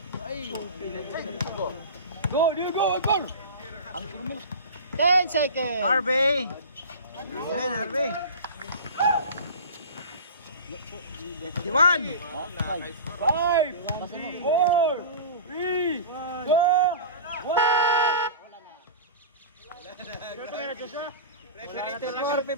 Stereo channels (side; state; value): both; inverted; correlation -0.33